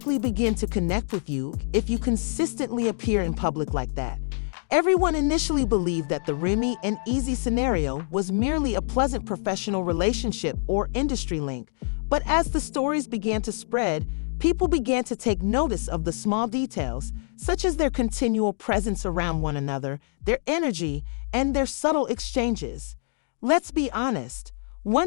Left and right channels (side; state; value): right; silent; digital silence